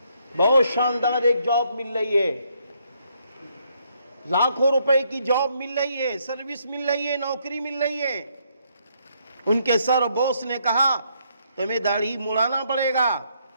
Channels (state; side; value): inverted; both; correlation -0.72